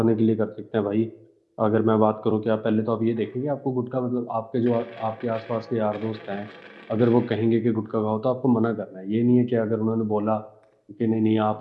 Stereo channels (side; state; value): both; identical; correlation 1.00